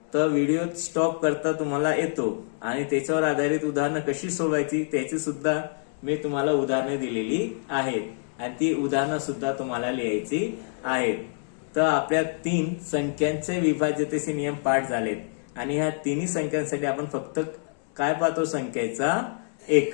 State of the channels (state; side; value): silent; right; digital silence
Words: तर व्हिडिओ स्टॉप करता तुम्हाला येतो आणि त्याच्यावर आधारित उदाहरणं कशी सोडवायची त्याची सुद्धा मी तुम्हाला उदाहरणं दिलेली आहेत आणि ती उदाहरणं सुद्धा तुम्हाला लिहायची आहेत. तर आपल्या 3 संख्यांचे विभाज्यतेचे नियम पाठ झालेत आणि ह्या तिन्ही संख्यांसाठी आपण फक्त काय पाहतो संख्येचा